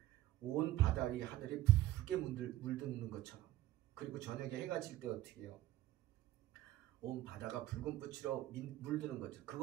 온 바다 위 하늘이 붉게 물드는 것처럼. 그리고 저녁에 해가 질 때 어떻게 해요? 온 바다가 붉은 빛으로 물드는 거죠.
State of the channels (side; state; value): left; quieter; 15.1 dB